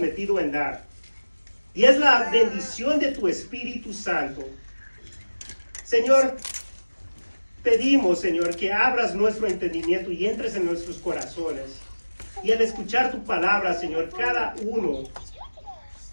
en dar. Y es la bendición de tu Espíritu Santo. Señor, pedimos, Señor, que abras nuestro entendimiento y entres en nuestros corazones. Y al escuchar tu palabra, Señor, cada uno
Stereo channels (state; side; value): inverted; both; correlation -1.00